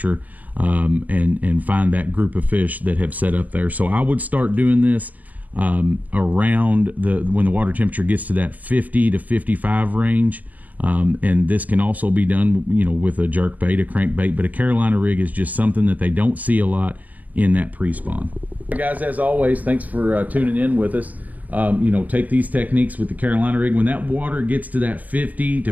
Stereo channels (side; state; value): left; late; 0.077 ms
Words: and find that group of fish that have set up there. So I would start doing this around when the water temperature gets to that 50 to 55 range. And this can also be done, with a jerk bait, a crankbait, but a Carolina rig is just something that they don't see a lot in that pre-spawn. Guys, as always, thanks for tuning in with us. Take these techniques with the Carolina rig. When that water gets to that 50